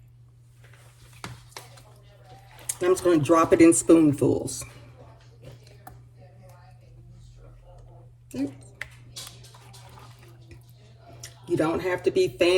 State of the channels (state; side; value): identical; both; correlation 1.00